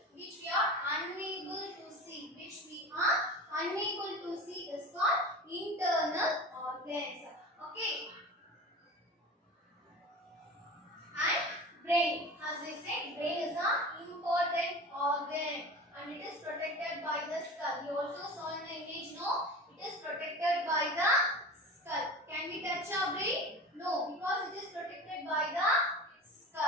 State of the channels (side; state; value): both; normal; correlation 0.33